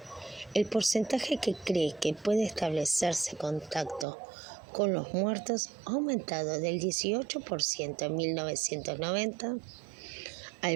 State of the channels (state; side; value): drops out; left; at 4.0 s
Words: El porcentaje que cree que puede establecerse contacto con los muertos ha aumentado del 18% en 1990 al